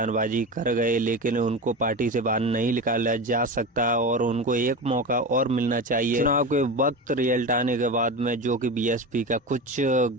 कर गए, लेकिन उनको पार्टी से बाहर नहीं निकाला जा सकता और उनको एक मौका और मिलना चाहिए। चुनाव के वक्त रिजल्ट आने के बाद में जो कि बीएसपी का कुछ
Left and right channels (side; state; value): both; normal; correlation 0.25